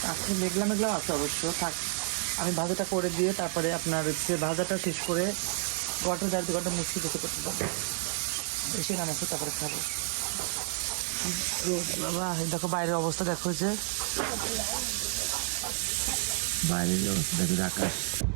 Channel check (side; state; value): left; silent; 58 dB below the other